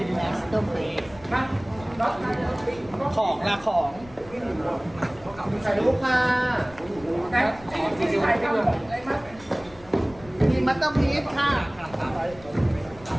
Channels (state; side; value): noise; left; rumble, 21 dB below the sound